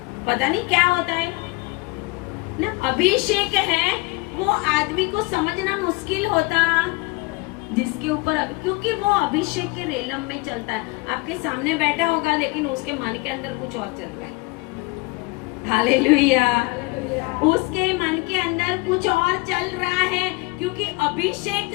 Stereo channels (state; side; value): quieter; right; 25.2 dB